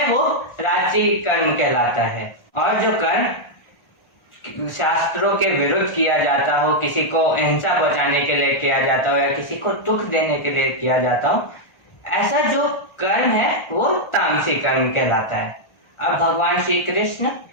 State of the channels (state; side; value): late; right; 1.4 ms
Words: वो राजसी कर्म कहलाता है। और जो कर्म शास्त्रों के विरुद्ध किया जाता हो, किसी को हिंसा पहुंचाने के लिए किया जाता हो या किसी को दुख देने के लिए किया जाता हो, ऐसा जो कर्म है वो तामसी कर्म कहलाता है। अब भगवान श्री कृष्ण